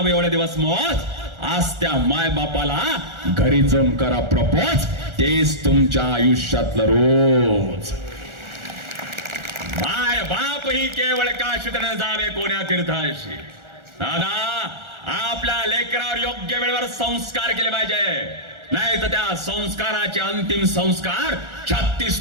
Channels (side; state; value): left; late; 1.4 ms